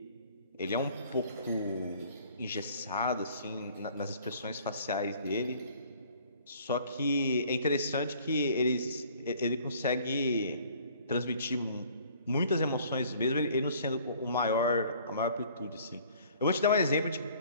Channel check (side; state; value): both; inverted; correlation -0.55